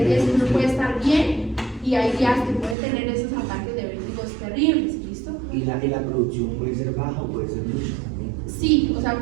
días que uno puede estar bien y hay días que puede tener esos ataques de vértigos terribles, ¿listo? Y la producción puede ser baja o puede ser mucha también. Sí, o sea,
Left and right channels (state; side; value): drops out; left; at 2.8 s